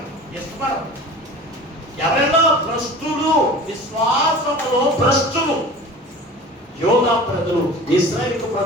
ఎవరైనా భ్రష్టులు, విశ్వాసములో భ్రష్టులు. యోగా ప్రజలు, ఇశ్రాయేలు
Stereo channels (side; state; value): both; normal; correlation 0.39